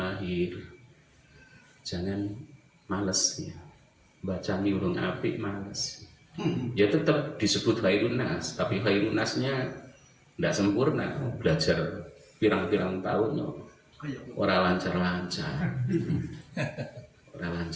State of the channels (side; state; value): both; identical; correlation 1.00